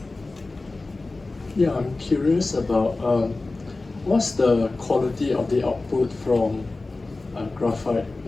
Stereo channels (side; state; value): right; quieter; 3.3 dB